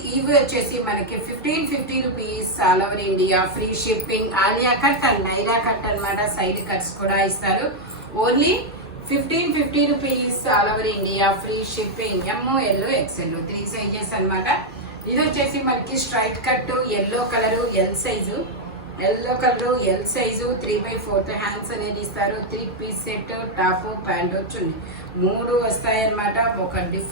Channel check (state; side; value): normal; both; correlation -0.01